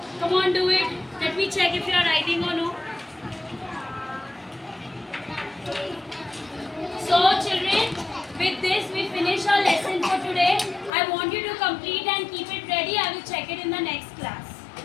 Come on, do it. Let me check if you are writing or no. So, children, with this we finish our lesson for today. I want you to complete and keep it ready. I will check it in the next class.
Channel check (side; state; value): right; drops out; at 10.9 s